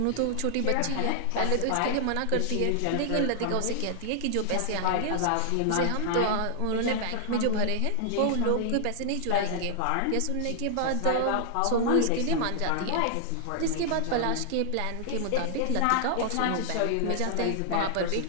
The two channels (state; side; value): different; both; correlation 0.00